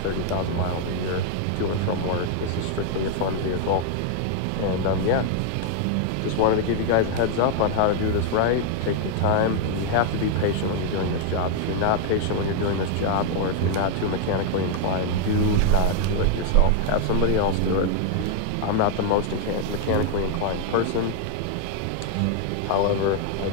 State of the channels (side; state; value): both; different; correlation 0.00